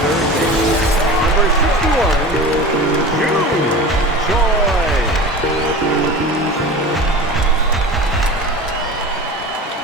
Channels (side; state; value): both; normal; correlation 0.34